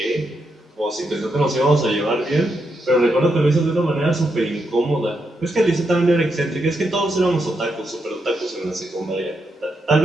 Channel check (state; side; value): normal; both; correlation 0.82